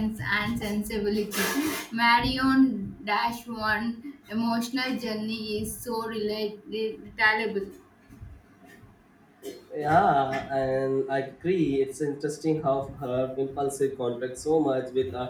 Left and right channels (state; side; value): identical; both; correlation 1.00